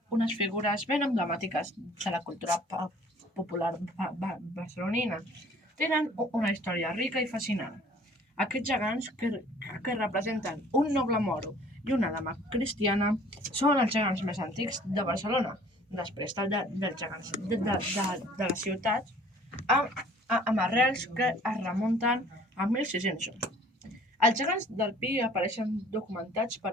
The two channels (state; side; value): normal; both; correlation 0.53